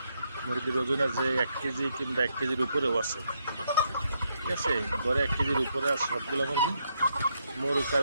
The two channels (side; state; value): both; inverted; correlation -0.77